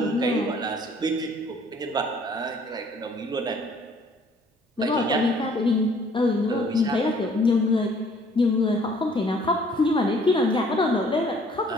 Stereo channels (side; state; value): both; normal; correlation 0.59